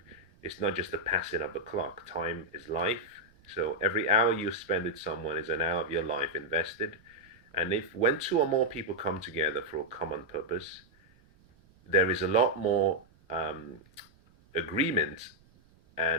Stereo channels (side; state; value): right; noise; rumble, 30 dB below the sound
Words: is not just the passing of the clock. Time is life. So every hour you spend with someone is an hour of your life invested. And if when two or more people come together for a common purpose, there is a lot more agreement